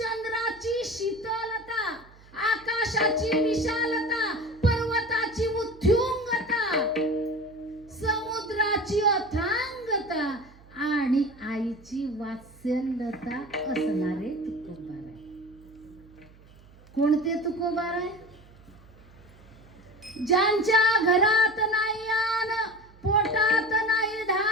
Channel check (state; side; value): noise; right; hum, 24 dB below the sound